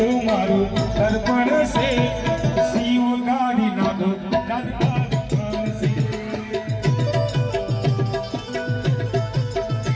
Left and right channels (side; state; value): both; identical; correlation 1.00